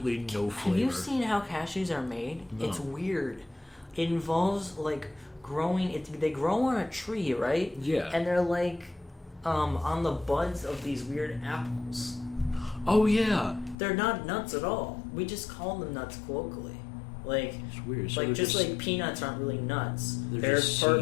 no flavor. Have you seen how cashews are made? No. It's weird. It involves growing. They grow on a tree, right? Yeah. And they're on the buds of these weird apples. Oh yeah. They're not nuts at all. We just call them nuts colloquially. It's weird. So just like peanuts aren't really nuts. They're just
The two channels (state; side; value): drops out; right; at 13.8 s